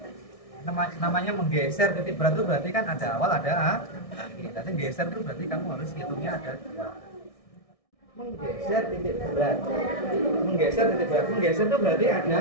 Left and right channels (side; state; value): right; late; 1.6 ms